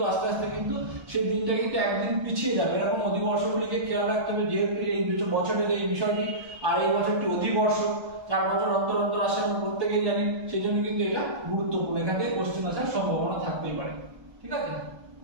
আস্তে আস্তে কিন্তু সেই দিনটা কিন্তু একদিন পিছিয়ে যাবে। এরকম অধিবর্ষগুলিকে খেয়াল রাখতে হবে, যেহেতু এই বছরের এই বিষয়টি আর এই বছরটি অধিবর্ষ 4 বছর অন্তর অন্তর আসে আমরা প্রত্যেকেই জানি, সেই জন্য কিন্তু এটা গুরুত্বপূর্ণ, এখান থেকে কোশ্চেন আসার সম্ভাবনা থাকতেই পারে। ঠিক আছে,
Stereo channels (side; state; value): left; late; 1.3 ms